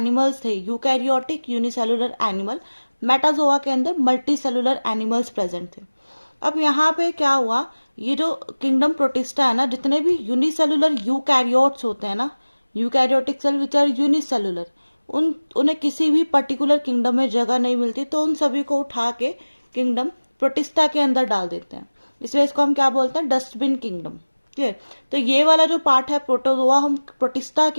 थे, यूकैरियोटिक यूनिसेलुलर एनिमल। मेटाजोआ के अंदर मल्टी सेलुलर एनिमल्स प्रेजेंट थे। अब यहाँ पे क्या हुआ, ये जो किंगडम प्रोटिस्टा है ना, जितने भी यूनिसेलुलर यूकैरियोट्स होते हैं ना, eukaryotic cell which are unicellular, उन्हें किसी भी पर्टिकुलर किंगडम में जगह नहीं मिलती, तो उन सभी को उठा के किंगडम प्रोटिस्टा के अंदर डाल देते हैं। इसलिए इसको हम क्या बोलते हैं? Dustbin kingdom. क्लियर? तो ये वाला जो पार्ट है प्रोटोजोआ, हम प्रोटिस्टा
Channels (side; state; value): both; inverted; correlation -1.00